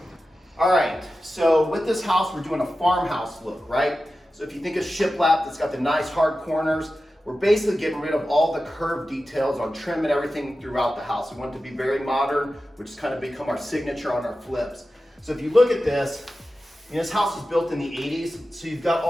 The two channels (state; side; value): normal; both; correlation 0.93